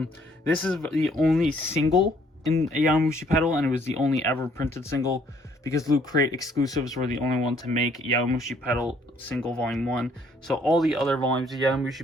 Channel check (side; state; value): both; normal; correlation 0.64